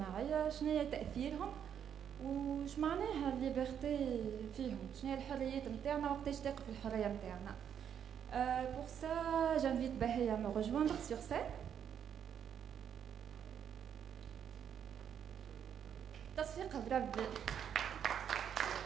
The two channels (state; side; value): quieter; left; 8.6 dB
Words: شنو هي تأثيرهم وش معناها الليبرتي فيهم، شنو هي الحريات نتاعنا وقتاش تقف الحرية نتاعنا. Pour ça, j'invite Bahé à me rejoindre sur scène. تصفيق بربي.